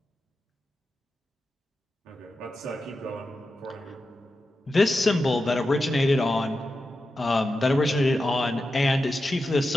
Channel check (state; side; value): normal; both; correlation 0.90